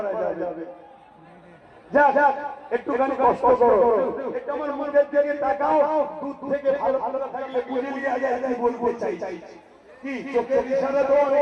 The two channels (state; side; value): identical; both; correlation 1.00